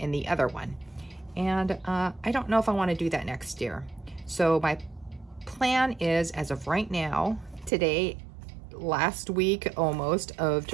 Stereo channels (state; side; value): drops out; left; at 7.7 s